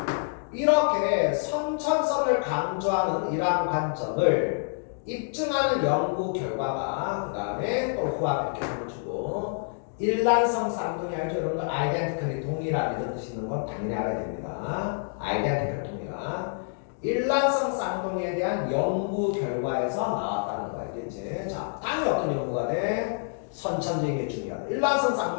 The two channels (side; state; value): right; silent; digital silence